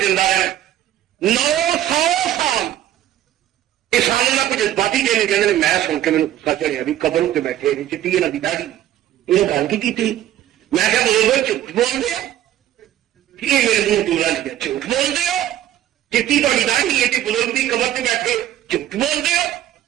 زندہ ہے 900 سال کسانوں کا کچھ جذباتی چینج کہتے ہیں میں سن کے میرے غصہ چڑھیا بھی قبر اتنے بیٹھے چٹی یہاں کی داڑھی یہ گل کی تھی میں کیا بزرگ جھوٹ بول دیا یہ میرے منہ ٹولا لیا جھوٹ بول دو چٹی تاری داڑھی ہے بزرگ کی قبر سے بیٹھے جھوٹ بول دو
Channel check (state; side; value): quieter; left; 12.4 dB